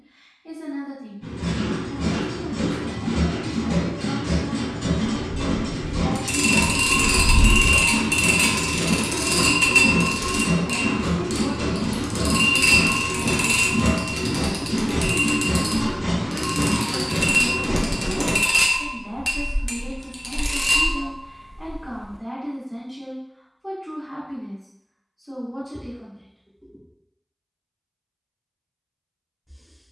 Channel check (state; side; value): identical; both; correlation 1.00